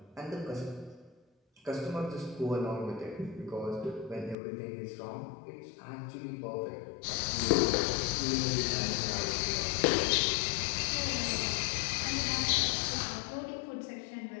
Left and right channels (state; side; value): drops out; right; at 4.4 s